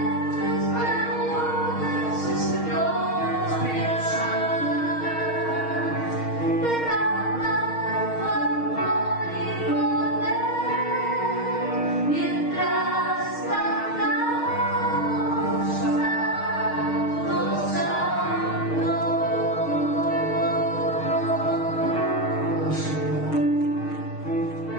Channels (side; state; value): right; late; 6.4 ms